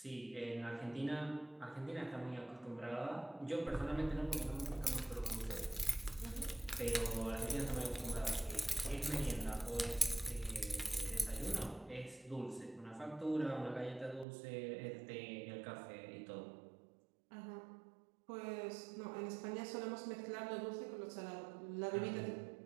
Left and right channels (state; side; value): drops out; left; at 14.2 s